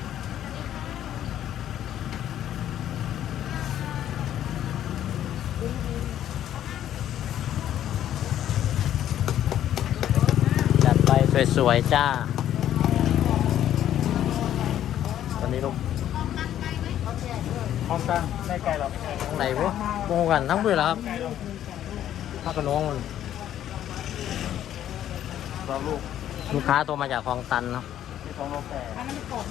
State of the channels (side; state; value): right; quieter; 11.3 dB